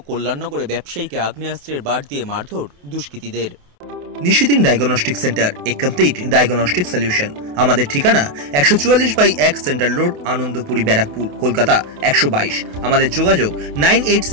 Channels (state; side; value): late; left; 28 ms